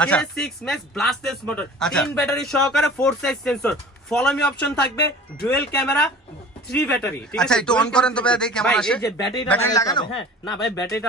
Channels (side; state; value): both; normal; correlation 0.43